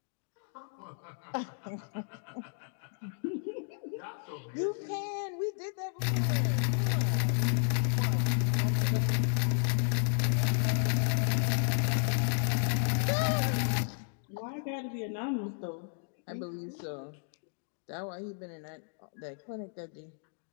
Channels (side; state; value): right; silent; digital silence